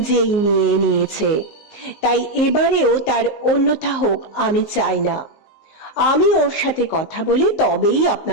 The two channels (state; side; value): late; right; 19 ms